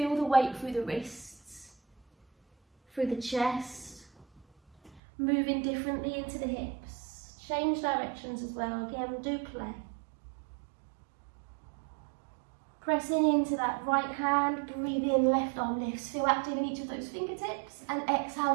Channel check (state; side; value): drops out; left; at 5.0 s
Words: the weight through the wrists, through the chest, moving differently into the hips. Change directions as well, again, do play. Pressing into that right hand, breathe in, left arm lifts. Feel active in each of those fingertips. And